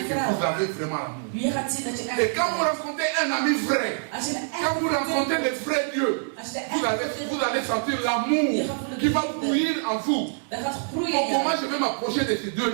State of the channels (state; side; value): silent; left; digital silence